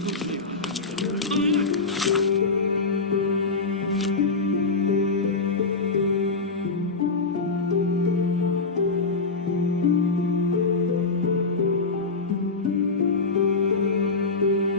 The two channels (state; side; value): quieter; right; 4.0 dB